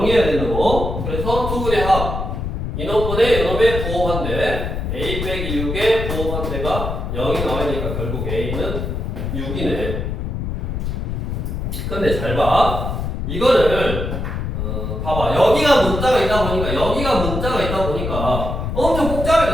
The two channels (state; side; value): noise; left; rumble, 3 dB below the sound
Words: 된다고. 그래서 두 분의 합 이놈분의 이놈의 부호반대 a 빼기 6의 부호반대가 0이 나와야 되니까 결국 a는 6이네. 근데 잘 봐. 이거를 봐봐. 여기가 문자가 있다 보니까 엄청